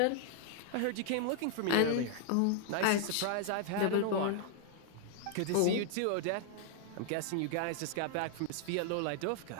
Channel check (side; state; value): both; different; correlation 0.00